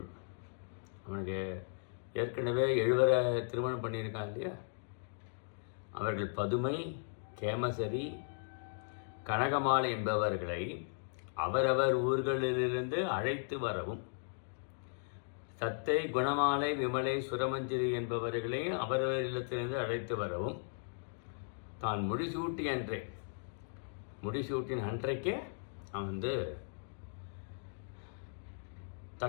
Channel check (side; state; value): right; silent; digital silence